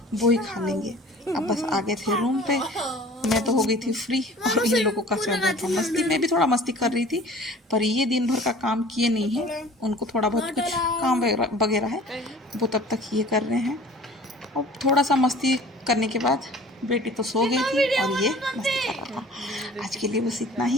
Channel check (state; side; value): normal; both; correlation 0.46